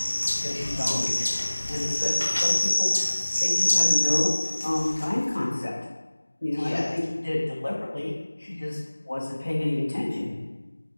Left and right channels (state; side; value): inverted; both; correlation -1.00